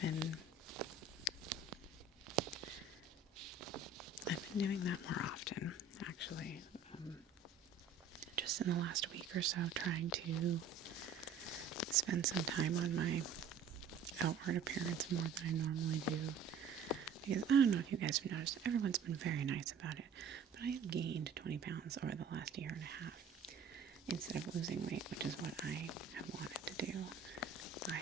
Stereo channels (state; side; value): quieter; left; 5.3 dB